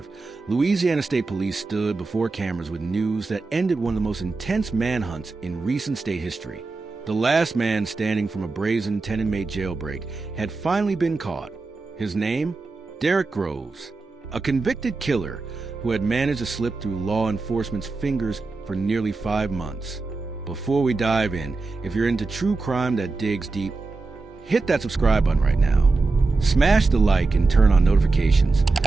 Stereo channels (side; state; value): left; quieter; 3.7 dB